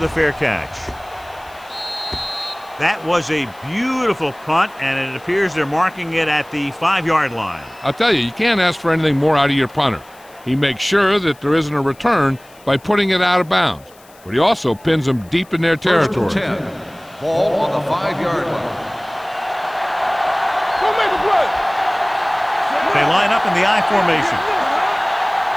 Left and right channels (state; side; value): noise; left; hiss, 27 dB below the sound